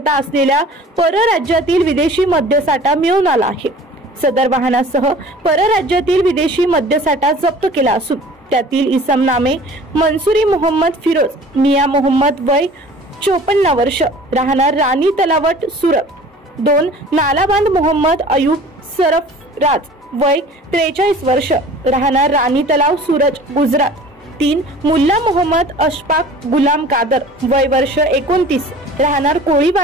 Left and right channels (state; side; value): normal; both; correlation 0.45